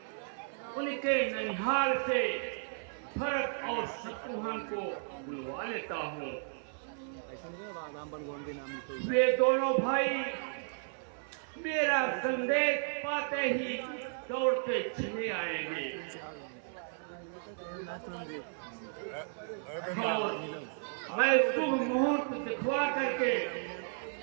उनके ननिहाल से भरत और शत्रुघ्न को बुलवा लेता हूँ। ऐसा नहीं राम बनगोन के नाम लिखो। वे दोनों भाई मेरा संदेश पाते ही दौड़ते चले आएंगे। मैं शुभ मुहूर्त दिखवा करके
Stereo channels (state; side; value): silent; left; 55 dB below the other